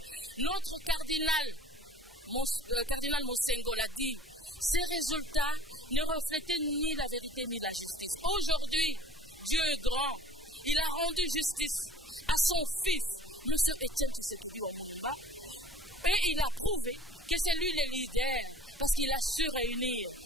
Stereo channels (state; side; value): normal; both; correlation 0.48